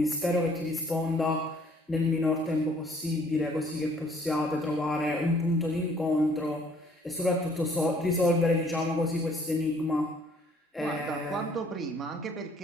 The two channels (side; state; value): both; normal; correlation 0.60